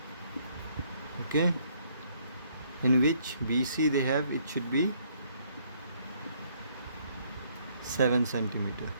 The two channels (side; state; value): both; inverted; correlation -0.67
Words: okay, in which BC they have, it should be 7 centimeter,